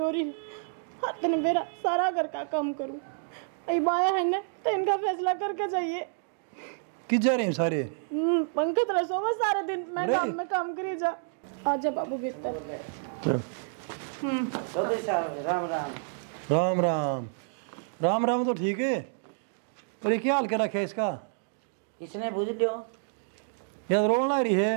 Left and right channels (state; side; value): silent; left; digital silence